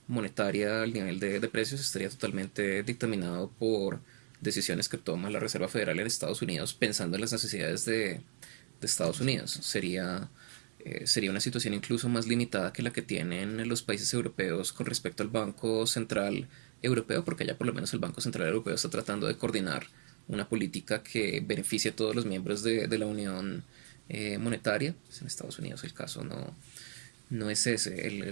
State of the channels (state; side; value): silent; left; digital silence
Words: monetaria, el nivel de precios estaría totalmente dictaminado por decisiones que toma la Reserva Federal en Estados Unidos pensando en las necesidades de Estados Unidos. Sería una situación incluso más limitada que la que tienen los países europeos con respecto al Banco Central Europeo, porque ya por lo menos el Banco Central Europeo está tratando de coordinar una política que beneficie a todos los miembros de la Unión Monetaria. Pues en Estados Unidos el caso no es ese.